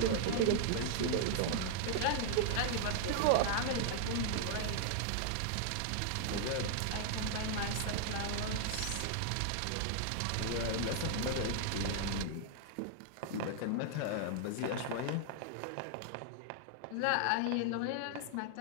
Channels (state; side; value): different; both; correlation 0.00